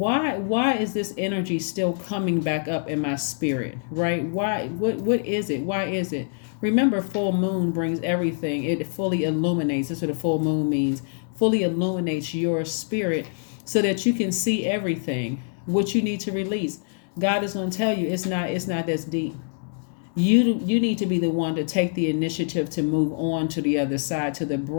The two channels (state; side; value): silent; right; 62 dB below the other